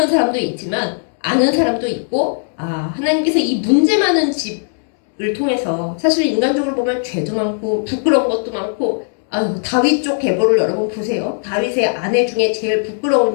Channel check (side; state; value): right; silent; 68 dB below the other